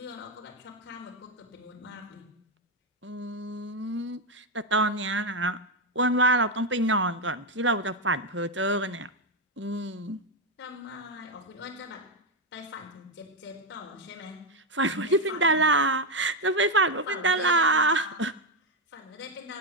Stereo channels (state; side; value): normal; both; correlation 0.06